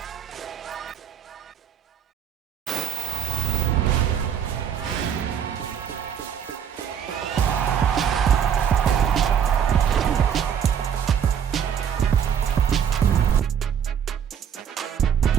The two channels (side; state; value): left; quieter; 8.4 dB